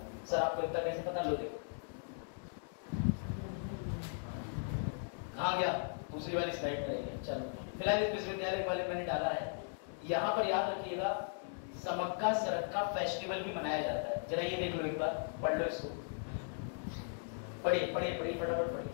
सर आपको इतना कैसे पता? लो देखो कहाँ गया, दूसरी वाली स्लाइड में रहेगा। चलो फिलहाल इस विश्वविद्यालय के बारे में मैंने डाला है। यहाँ पर याद रखिएगा समक्का सरक्का फेस्टिवल भी मनाया जाता है। जरा ये देख लो, एक बार पढ़ लो इसको, पढ़िए पढ़िए पढ़िए फटाफट पढ़िए।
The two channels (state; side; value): silent; right; digital silence